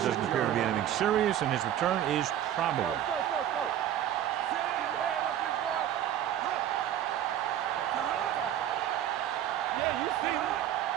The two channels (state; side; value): quieter; left; 11.1 dB